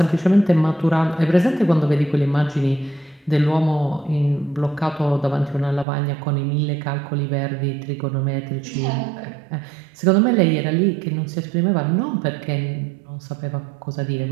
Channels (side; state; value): left; drops out; at 5.9 s